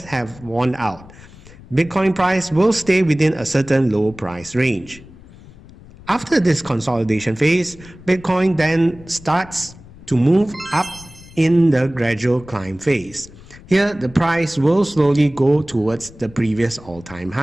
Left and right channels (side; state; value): left; noise; rumble, 20 dB below the sound